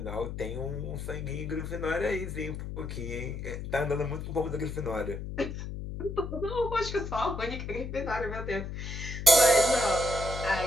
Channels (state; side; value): noise; left; hum, 6 dB below the sound